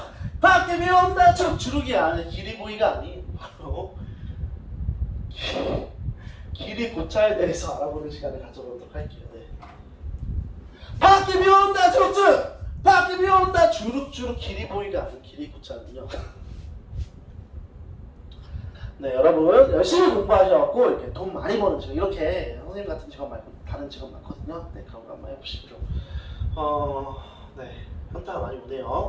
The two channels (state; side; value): identical; both; correlation 1.00